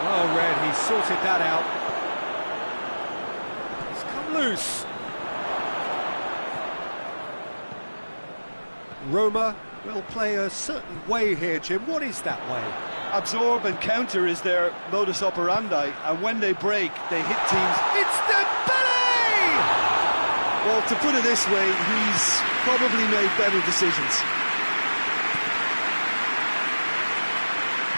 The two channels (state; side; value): inverted; both; correlation -1.00